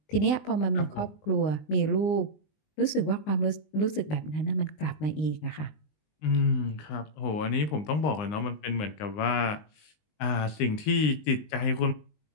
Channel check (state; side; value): late; right; 19 ms